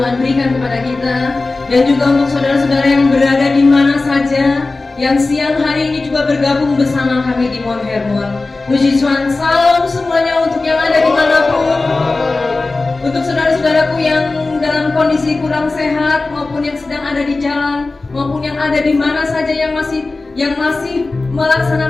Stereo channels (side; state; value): right; quieter; 3.4 dB